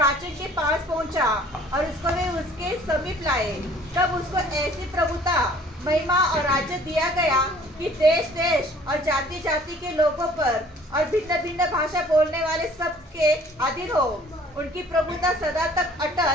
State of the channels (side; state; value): both; normal; correlation 0.54